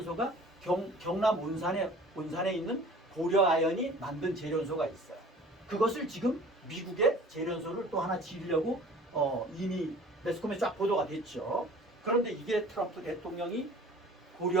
경남 온산에 있는 고려아연이 만든 재련소가 있어요. 그것을 지금 미국의 재련소를 또 하나 지으려고 이미 매스컴에 쫙 보도가 됐죠. 그런데 이게 트럼프 대통령이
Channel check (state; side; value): normal; both; correlation 0.47